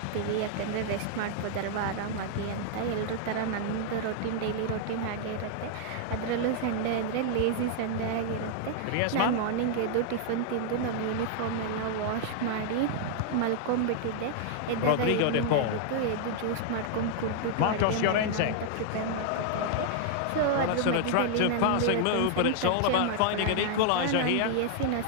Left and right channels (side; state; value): both; different; correlation -0.01